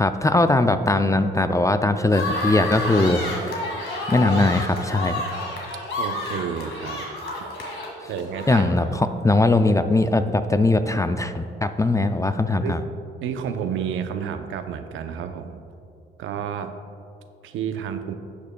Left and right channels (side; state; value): both; normal; correlation 0.70